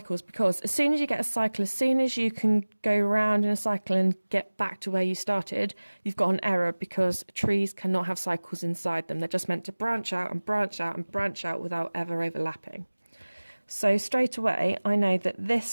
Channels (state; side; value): inverted; both; correlation -1.00